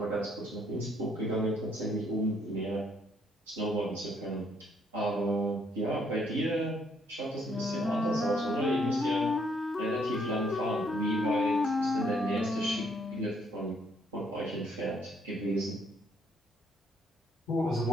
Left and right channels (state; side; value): normal; both; correlation 0.69